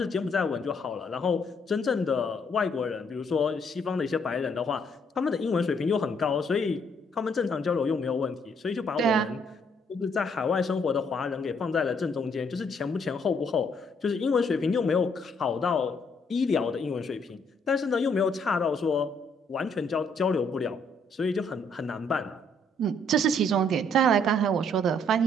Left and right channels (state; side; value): normal; both; correlation 0.68